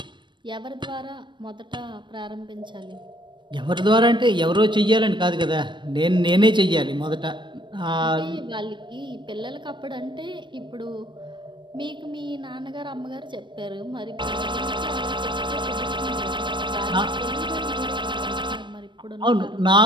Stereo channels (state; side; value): late; left; 0.22 ms